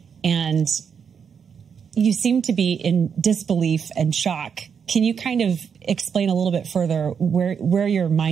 and you seem to be in disbelief and shock. Can you kind of explain a little bit further where your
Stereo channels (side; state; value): left; quieter; 6.9 dB